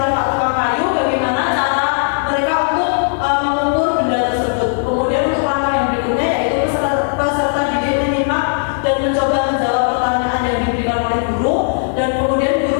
Pak Tukang Kayu, bagaimana cara mereka untuk mengukur benda tersebut. Kemudian untuk langkah yang berikutnya yaitu peserta didik menyimak dan mencoba menjawab pertanyaan yang diberikan oleh guru, dan kemudian guru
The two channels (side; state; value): right; silent; digital silence